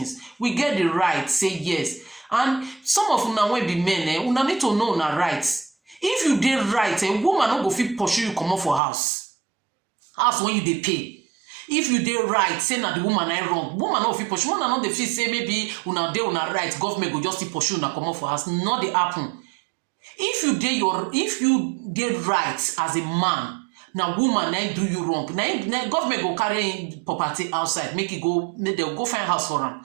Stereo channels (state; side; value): drops out; left; at 8.8 s